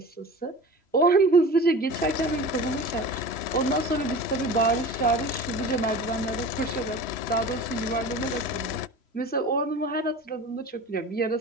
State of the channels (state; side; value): late; right; 3.0 ms